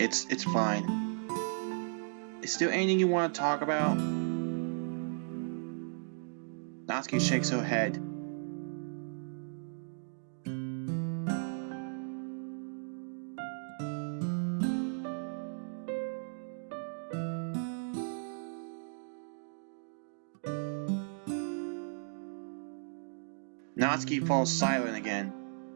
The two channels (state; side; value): silent; left; digital silence